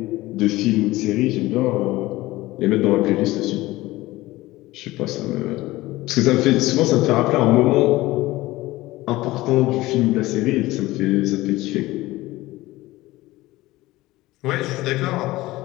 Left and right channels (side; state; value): right; quieter; 18.4 dB